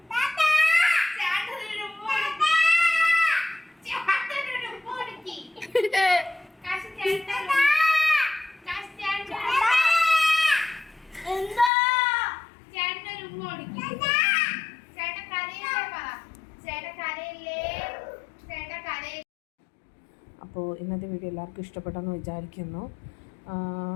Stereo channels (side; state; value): right; drops out; at 11.7 s